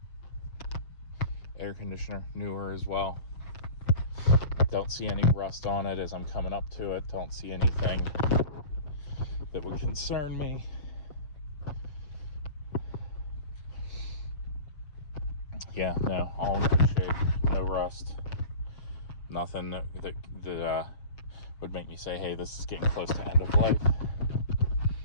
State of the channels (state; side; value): late; right; 6.6 ms